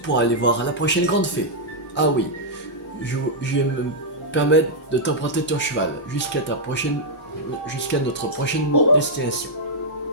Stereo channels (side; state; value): both; normal; correlation -0.06